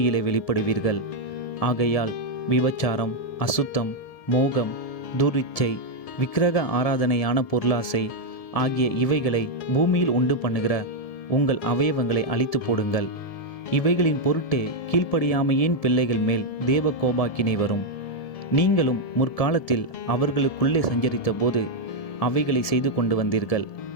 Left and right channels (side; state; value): right; late; 1.7 ms